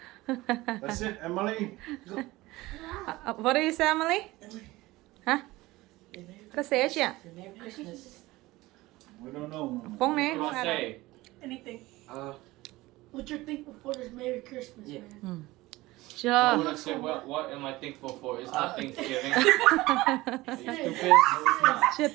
That's it, Emily. What do you say, Emily? Hả? Có xé chị ạ? Merry Christmas. We don't know. Phong nè, What do I say? Anything. What you're thankful for this Merry Christmas, man. Chưa. What would I say? What am I thankful for? It's not Thanksgiving. Are you stupid? No, it's not. Chưa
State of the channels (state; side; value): quieter; left; 19.3 dB